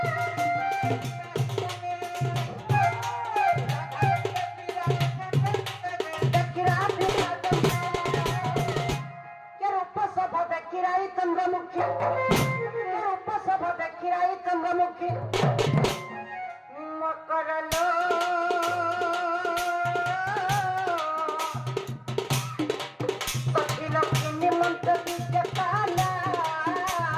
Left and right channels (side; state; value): both; identical; correlation 1.00